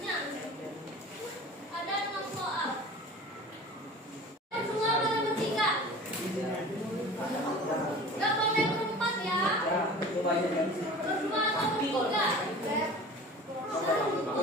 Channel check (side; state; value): both; normal; correlation 0.40